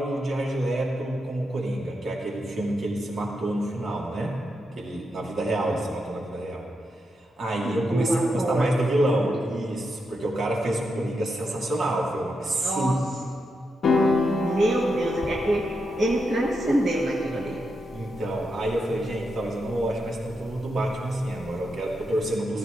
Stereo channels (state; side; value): normal; both; correlation 0.85